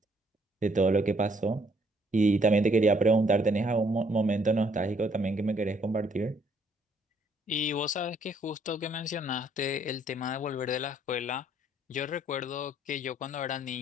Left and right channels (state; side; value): normal; both; correlation 0.66